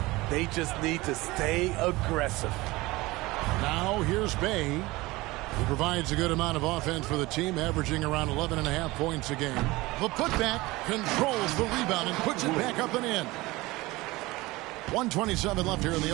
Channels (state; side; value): quieter; left; 20.7 dB